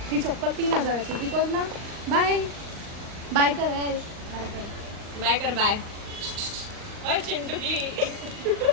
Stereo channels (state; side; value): late; left; 39 ms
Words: ही चप्पल 3000ची. बिकॉज ना बाय बाय कर, बाय कर. बाय ओय चिंटुकली.